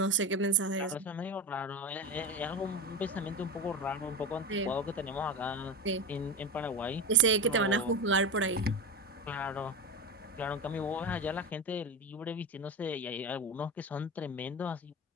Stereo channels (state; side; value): normal; both; correlation 0.22